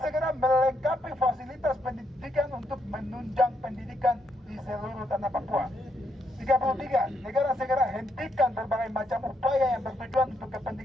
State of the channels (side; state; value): both; normal; correlation 0.77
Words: segera melengkapi fasilitas pendidikan untuk menunjang pendidikan di seluruh tanah Papua. 33. Negara segera hentikan berbagai macam upaya yang bertujuan untuk